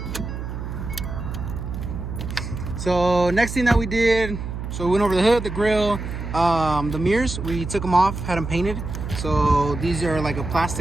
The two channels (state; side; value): noise; right; hum, 6 dB below the sound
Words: So next thing that we did, so we went over the hood, the grill, the mirrors, we took them off, had them painted. So these are like a